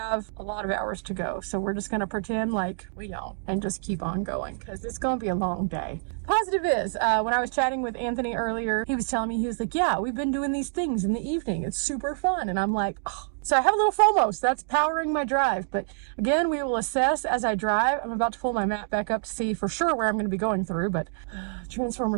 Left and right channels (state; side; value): silent; left; digital silence